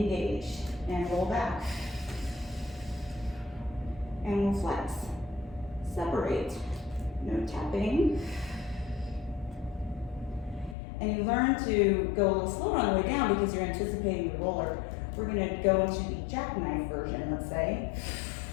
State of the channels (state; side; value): drops out; right; at 10.8 s